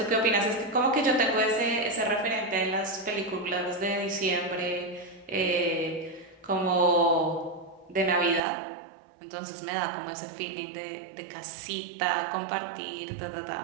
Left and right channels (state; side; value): drops out; left; at 8.4 s